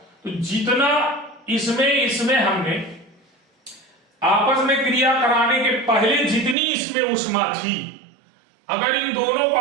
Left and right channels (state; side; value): drops out; left; at 6.6 s